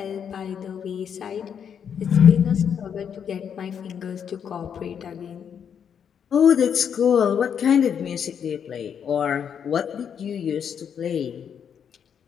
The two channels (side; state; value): right; quieter; 7.9 dB